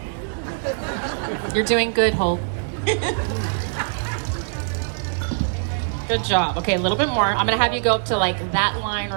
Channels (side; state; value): left; silent; digital silence